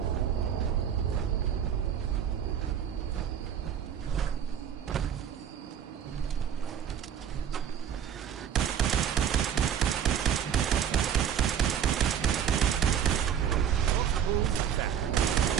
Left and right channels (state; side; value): quieter; left; 8.6 dB